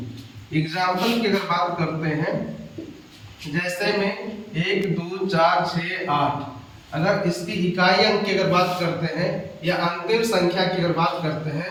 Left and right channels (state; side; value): identical; both; correlation 1.00